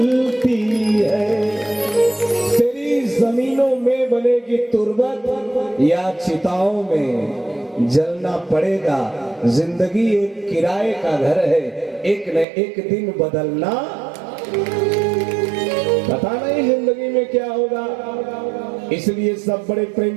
है। तेरी जमीनों में बनेगी तुरबत या चिताओं में जलना पड़ेगा। जिंदगी एक किराए का घर है, एक न एक दिन बदलना, पता नहीं जिंदगी में क्या होगा। इसलिए सब बड़े प्रेम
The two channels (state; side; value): drops out; left; at 12.5 s